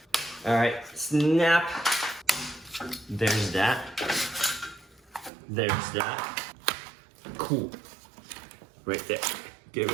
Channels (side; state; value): left; drops out; at 5.3 s